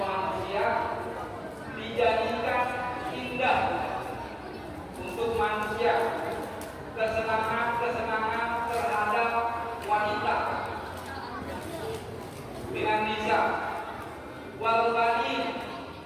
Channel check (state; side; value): identical; both; correlation 1.00